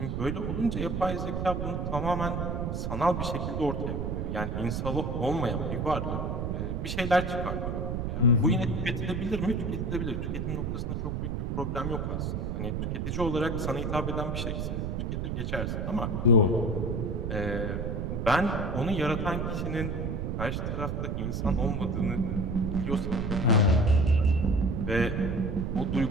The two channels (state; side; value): noise; right; rumble, 1 dB below the sound